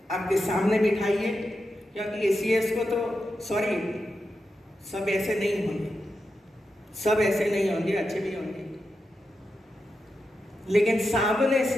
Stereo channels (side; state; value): both; normal; correlation 0.88